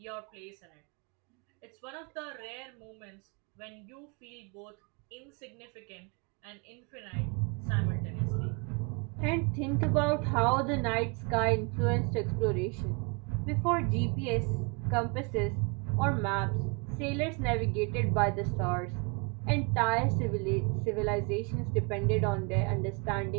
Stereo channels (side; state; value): left; quieter; 32.4 dB